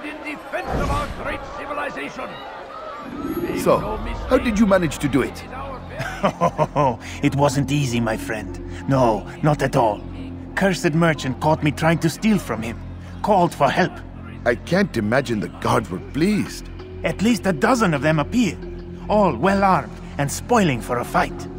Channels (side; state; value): both; identical; correlation 1.00